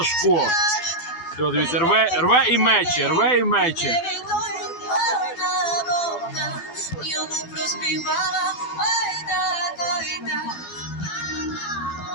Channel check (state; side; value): late; right; 12 ms